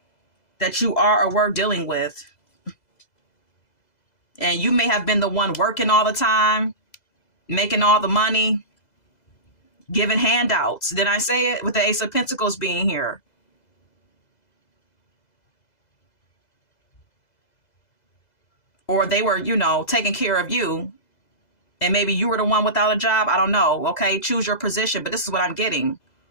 that you are or were dealing with. And you may have been the one working all the time, making all the money, giving handouts. Did I say it? With the Ace of Pentacles being here. Or they were, taking care of you. And maybe you were the one without a job. I don't know. Okay, choose your position. But this is what I'm getting.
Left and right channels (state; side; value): late; right; 2.0 ms